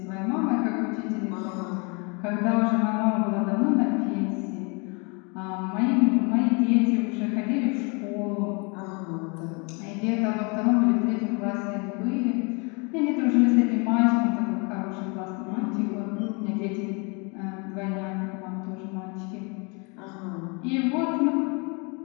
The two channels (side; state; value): right; quieter; 32.0 dB